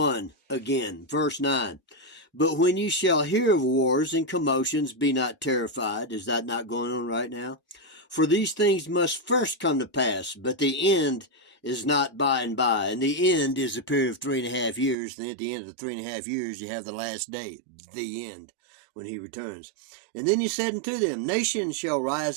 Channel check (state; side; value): drops out; left; at 15.0 s